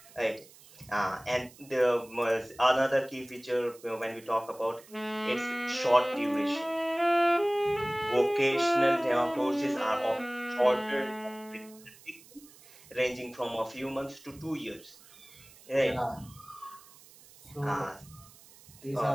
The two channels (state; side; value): noise; right; hiss, 23 dB below the sound